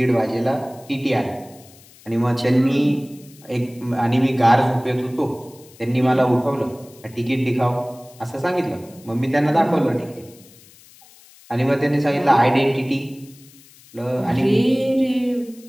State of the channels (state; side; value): noise; left; hiss, 25 dB below the sound